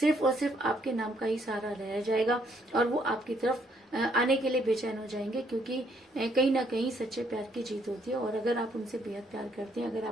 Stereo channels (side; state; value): both; normal; correlation 0.69